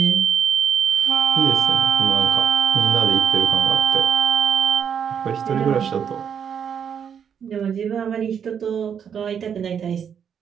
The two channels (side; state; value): left; quieter; 7.8 dB